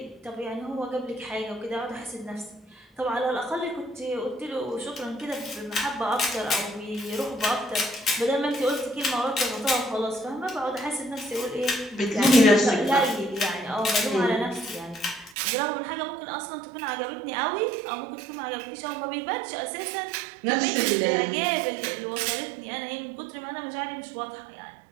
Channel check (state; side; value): drops out; left; at 15.4 s